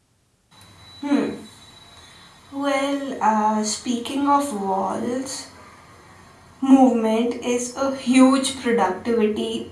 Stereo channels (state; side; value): identical; both; correlation 1.00